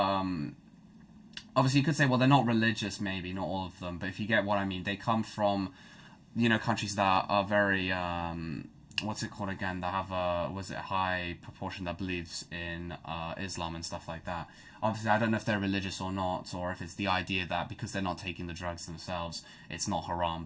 obviously, you could say, well, they're not religious, maybe, not all of them, but if you get what I mean, they come from, you know, countries that are very, what's it called again, that have a, was it a high proportion that believes in Islam and stuff like that. Obviously, I don't know if they're religious or not, or if it's the idea that because they're not taking the drugs themselves, it's not haram,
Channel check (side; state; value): both; identical; correlation 1.00